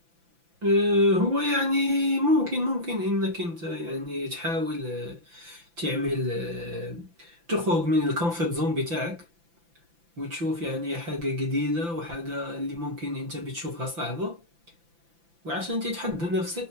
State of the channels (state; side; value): late; left; 5.9 ms